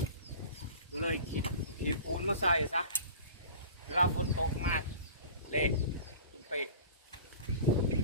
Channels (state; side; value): inverted; both; correlation -0.40